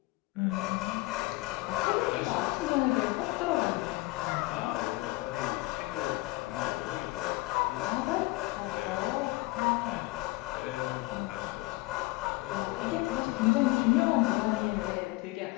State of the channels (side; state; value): right; quieter; 21.9 dB